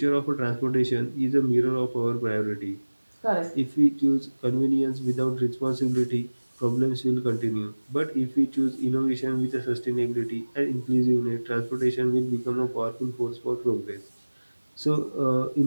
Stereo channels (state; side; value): inverted; both; correlation -1.00